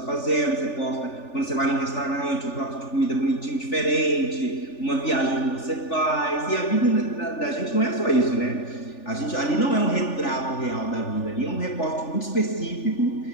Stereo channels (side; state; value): right; late; 3.4 ms